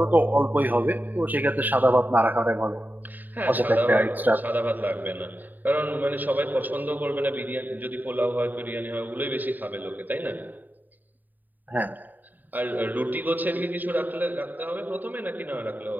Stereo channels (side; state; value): left; late; 0.087 ms